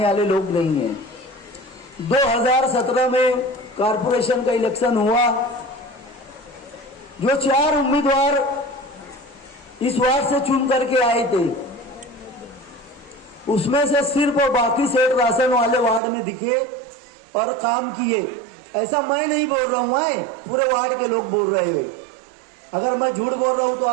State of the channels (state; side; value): drops out; left; at 16.0 s